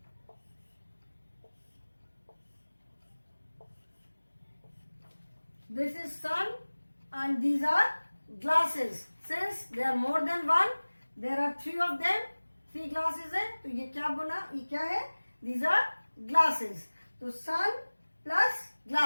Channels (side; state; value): both; inverted; correlation -1.00